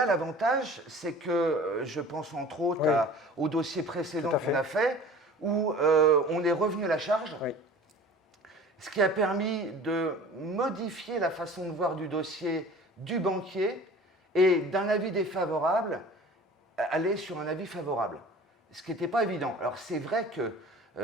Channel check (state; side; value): normal; both; correlation 0.43